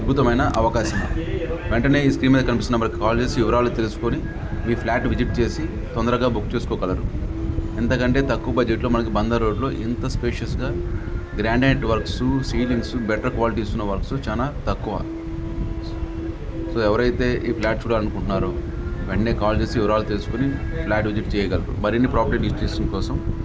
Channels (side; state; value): both; identical; correlation 1.00